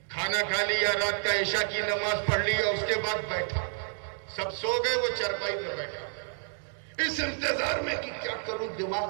کھانا کھا لیا، رات کا عشاء کی نماز پڑھ لیا، اس کے بعد بیٹھا، سب سو گئے، وہ چرپائی پہ بیٹھا اس انتظار میں کہ کیا کروں، دماغ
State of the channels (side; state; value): left; silent; digital silence